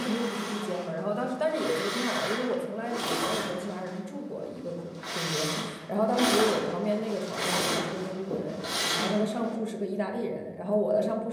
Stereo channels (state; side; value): identical; both; correlation 1.00